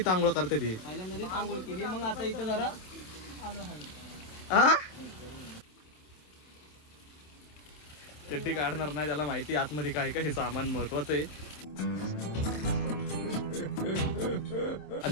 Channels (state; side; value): late; right; 27 ms